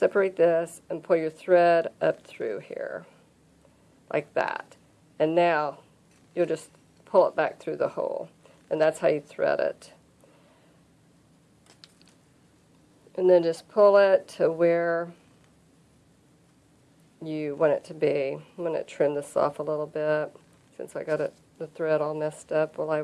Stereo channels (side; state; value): both; identical; correlation 1.00